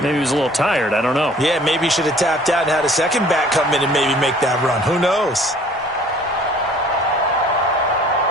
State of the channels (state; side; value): normal; both; correlation 0.53